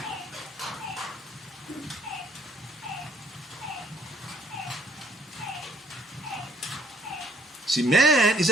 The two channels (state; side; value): normal; both; correlation 0.64